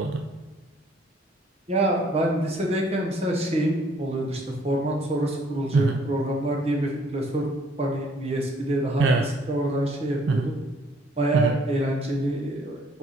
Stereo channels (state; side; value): normal; both; correlation 0.62